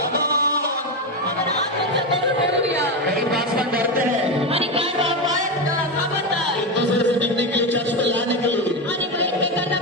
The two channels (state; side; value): normal; both; correlation 0.13